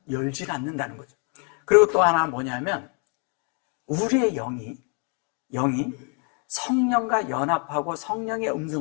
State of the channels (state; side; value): quieter; right; 38.2 dB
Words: 열질 않는다는 거죠. 그리고 또 하나 뭐냐면 우리의 영이 성령과 연합하고 성령의